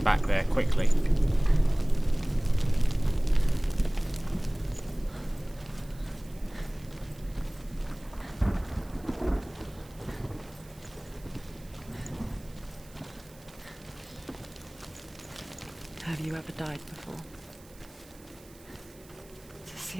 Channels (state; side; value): noise; right; hiss, 24 dB below the sound